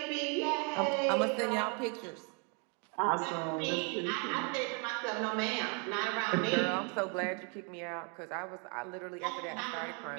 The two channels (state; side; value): quieter; left; 36.3 dB